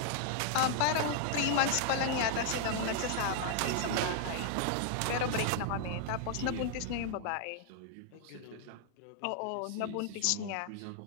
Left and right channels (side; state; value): both; different; correlation 0.00